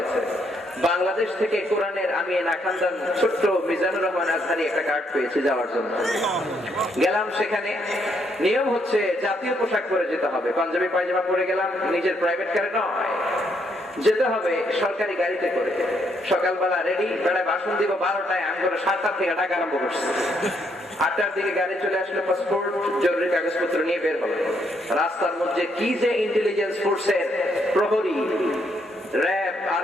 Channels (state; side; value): normal; both; correlation 0.74